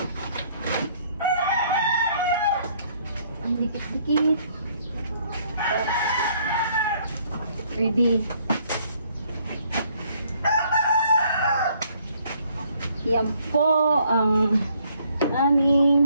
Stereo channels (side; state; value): both; inverted; correlation -0.65